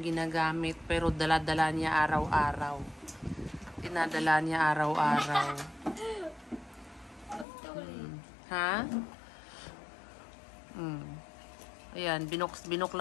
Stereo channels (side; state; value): right; drops out; at 7.5 s